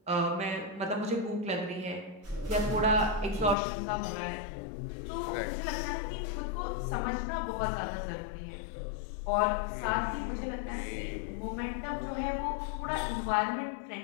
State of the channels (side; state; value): right; drops out; at 3.6 s